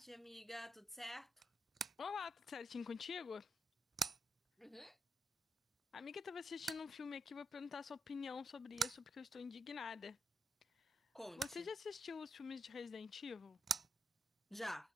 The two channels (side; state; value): both; normal; correlation 0.82